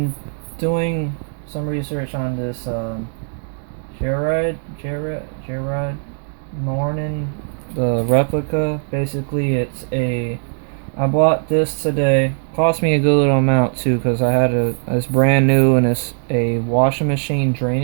doing some research on this Gerard morin, the replica. Basically, I bought this today. Cost me a good little amount too, because I had it's brand new and it's a washing machine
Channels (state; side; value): silent; left; 66 dB below the other